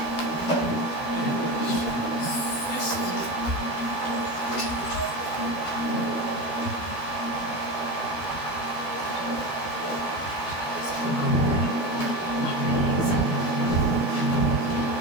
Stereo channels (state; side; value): late; right; 12 ms